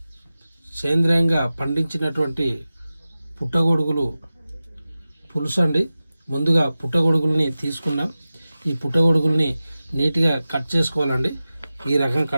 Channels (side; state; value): both; inverted; correlation -0.95